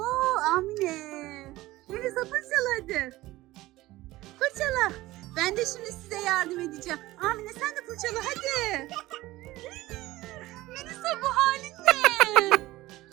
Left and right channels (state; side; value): quieter; left; 17.8 dB